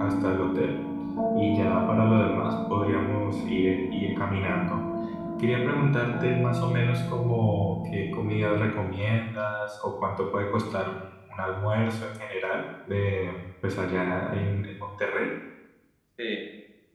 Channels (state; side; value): identical; both; correlation 1.00